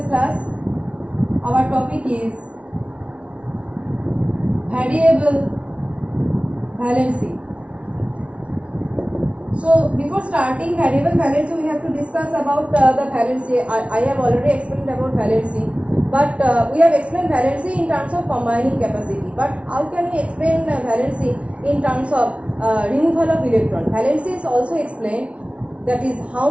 class our topic is variable valency. So before starting variable valency, we have to discuss about the valency. I have already explained about valency, but we have explained valency in terms of combining capacity. But how can we explain valency in terms of removal of electron? Valency is also explained, that is how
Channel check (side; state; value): left; late; 0.062 ms